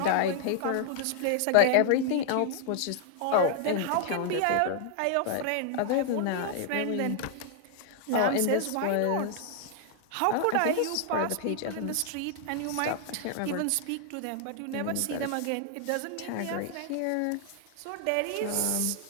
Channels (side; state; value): both; different; correlation 0.00